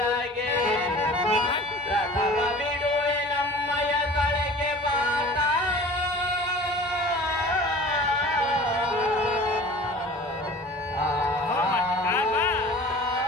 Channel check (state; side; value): normal; both; correlation 0.42